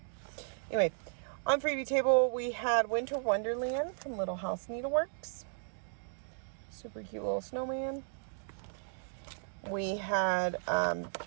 Anyway, on freebie table we had Winter Wonderland from Little House Needleworks. Super cute little snowman. We had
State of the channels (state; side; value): silent; left; digital silence